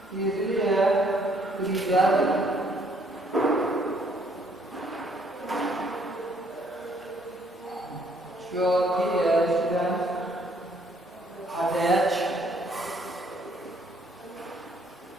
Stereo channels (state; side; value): normal; both; correlation 0.66